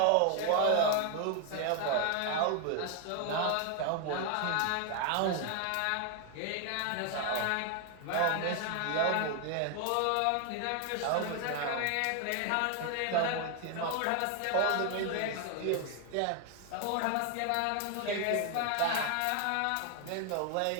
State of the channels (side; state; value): both; different; correlation 0.01